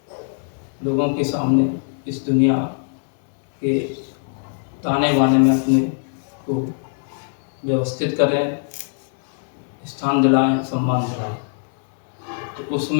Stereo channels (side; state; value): right; silent; 64 dB below the other